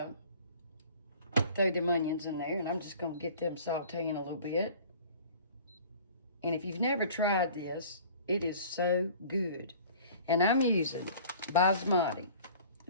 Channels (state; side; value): inverted; both; correlation -0.47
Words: throw them onions in there, and I'm just going to get them sauteing a little bit. And if you've never tried this, it is so good. And I'm using basmati.